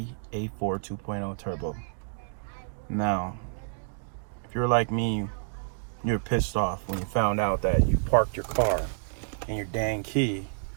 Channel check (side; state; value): left; silent; digital silence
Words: A4 2.0 Turbo. Now, if you're like me, you're pissed off when you found out that you parked your car and your dang key